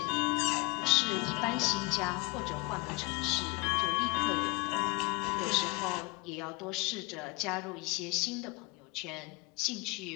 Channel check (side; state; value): right; quieter; 24.9 dB